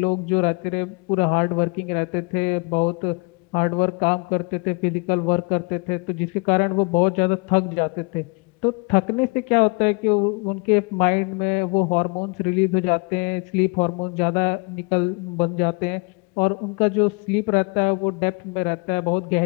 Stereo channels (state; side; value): quieter; right; 30.8 dB